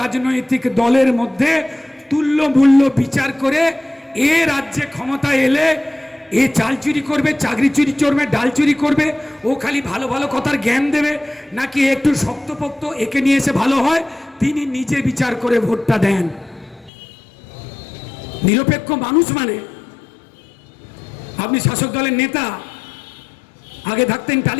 রাজনৈতিক দলের মধ্যে তুল্য মূল্য বিচার করে এ রাজ্যে ক্ষমতা এলে এ চাল চুরি করবে, চাকরি চুরি করবে, ডাল চুরি করবে, ও খালি ভালো ভালো কথার জ্ঞান দেবে, নাকি একটু শক্তপোক্ত একে নিয়ে এসে ভালো হয়, তিনি নিজে বিচার করে ভোটটা দেন। নিরপেক্ষ মানুষ মানে, আপনি শাসক দলের নেতা, আগে থাকতেন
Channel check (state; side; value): drops out; right; at 16.9 s